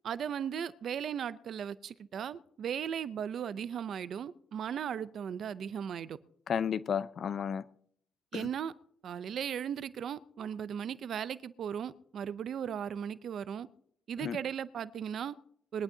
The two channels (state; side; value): quieter; left; 3.5 dB